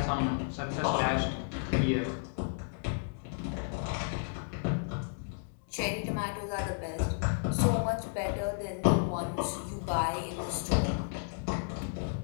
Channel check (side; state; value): right; silent; digital silence